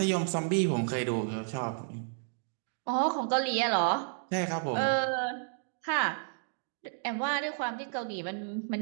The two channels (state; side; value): silent; left; digital silence